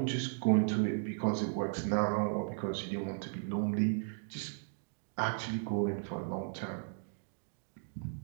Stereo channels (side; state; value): left; silent; digital silence